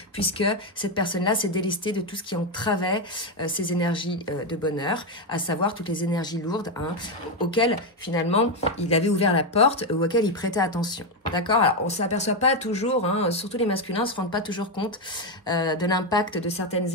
puisque cette personne-là s'est délestée de tout ce qui entravait ses énergies de bonheur, à savoir toutes les énergies lourdes, hein, auxquelles, finalement, il avait ouvert la porte, ou auxquelles il prêtait attention. D'accord? Alors, on ne s'aperçoit pas toujours, hein, surtout les masculins ne se rendent pas toujours compte de l'impact de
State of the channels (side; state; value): both; normal; correlation 0.07